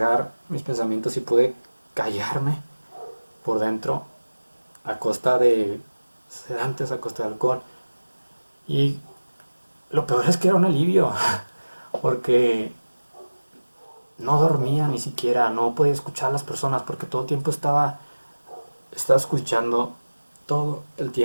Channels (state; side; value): inverted; both; correlation -1.00